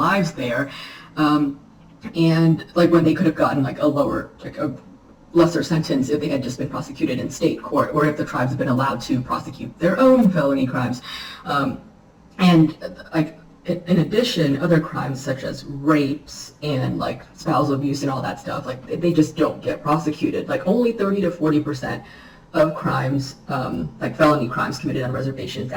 there. And like when they could have gotten like a lower, like a lesser sentence if they had just been prosecuted in state court, or if the tribes had been allowed to prosecute their own felony crimes. And like in addition, other crimes such as rapes and like spousal abuse and all that stuff, like they just don't get prosecuted. Like only 30 to 40% of crimes, like felony crimes committed on reservations,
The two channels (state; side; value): identical; both; correlation 1.00